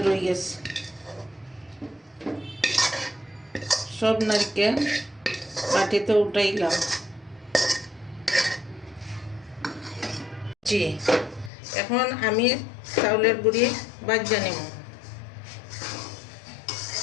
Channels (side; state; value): right; drops out; at 11.5 s